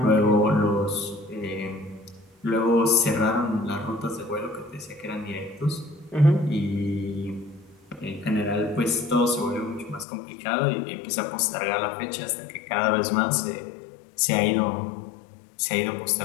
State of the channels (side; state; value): right; drops out; at 10.1 s